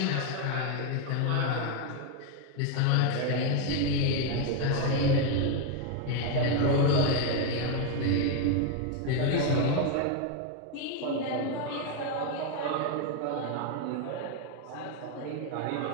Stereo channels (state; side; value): different; both; correlation 0.01